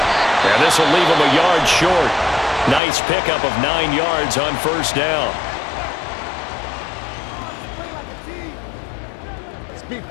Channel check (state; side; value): drops out; right; at 2.8 s